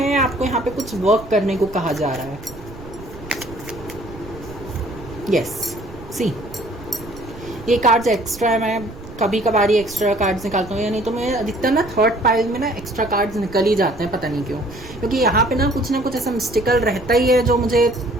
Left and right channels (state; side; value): noise; right; rumble, 16 dB below the sound